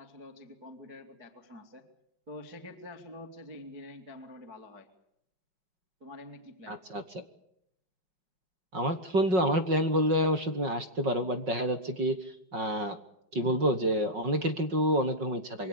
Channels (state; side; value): late; left; 5.4 ms